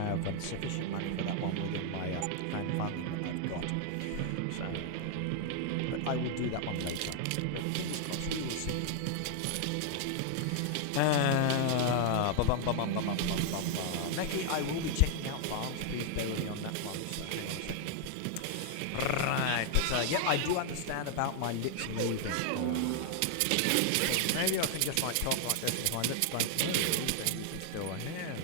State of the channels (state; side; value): different; both; correlation 0.00